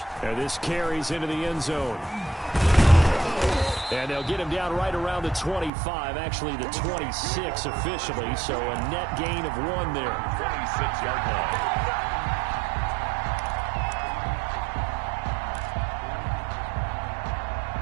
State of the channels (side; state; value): left; drops out; at 5.7 s